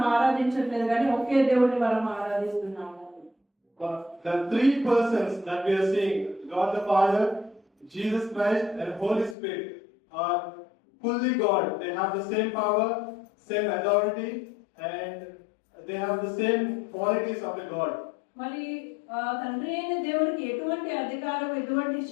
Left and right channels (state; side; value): drops out; right; at 9.3 s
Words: ఆరాధించట్లేదు కానీ ఒకే దేవుడిని మనం ఆరాధిస్తున్నాము. The three persons that we are seeing, God the Father, Jesus Christ, and Holy Spirit, are fully God. They have the same power, same authority, and they have the same qualities of the God. మరి తండ్రి అయిన దేవుడికి ఎటువంటి అధికారం, ఎటువంటి